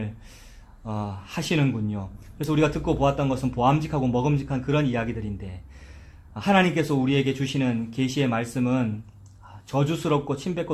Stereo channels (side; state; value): both; identical; correlation 1.00